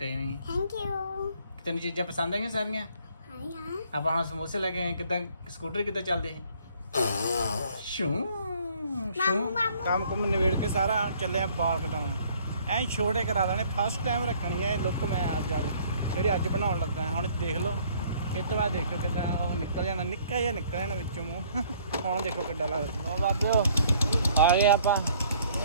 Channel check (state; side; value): inverted; both; correlation -0.59